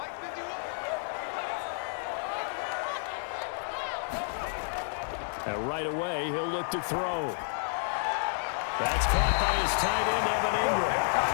And right away, he'll look to throw. That's caught by his tight end, Evan Ingram.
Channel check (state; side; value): silent; right; digital silence